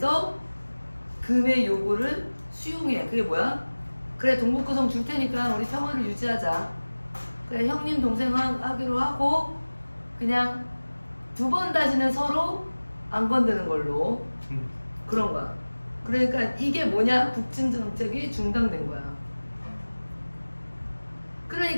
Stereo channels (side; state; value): both; inverted; correlation -1.00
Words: 금의 요구를 수용해. 그게 뭐야? 그래 동북구성 줄 테니까 우리 평화를 유지하자. 그래 형님 동생 하기로 하고 그냥 두 번 다시는 서로 안 건드는 걸로. 그런 거야. 그러니까 이게 뭐냐? 북진 정책이 중단된 거야.